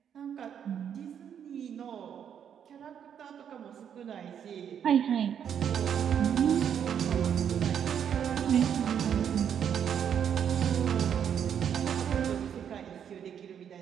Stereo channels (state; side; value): quieter; left; 8.5 dB